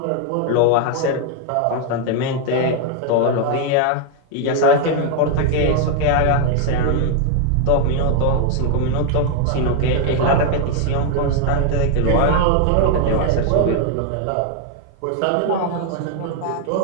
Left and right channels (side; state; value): both; different; correlation 0.00